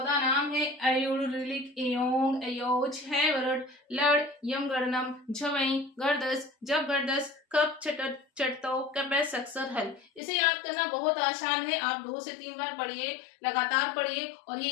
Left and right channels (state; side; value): drops out; right; at 10.2 s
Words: नाम है। अयुर, ऋलिक, एयोंग, अयोज, है वरड, लड़, यम, गणनम, झवई, गर्दस, जब गर्दस, कप, छटत, चटतो, कपै, सक्सर, हल। इसे याद करना बहुत आसान है। आप 2 से 3 बार पढ़िए, लगातार पढ़िए और ये